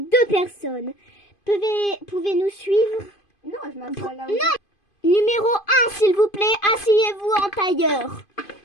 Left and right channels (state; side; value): late; right; 2.5 ms